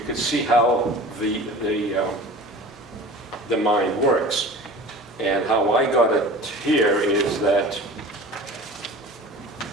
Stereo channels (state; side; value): normal; both; correlation 0.39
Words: can see how the mind works. And how I got it here is that,